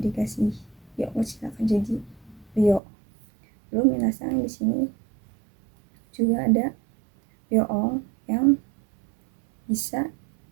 dikasih yo kecil akan jadi ryo. Lalu minasang di sini juga ada yoong yang bisa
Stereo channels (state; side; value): drops out; left; at 2.8 s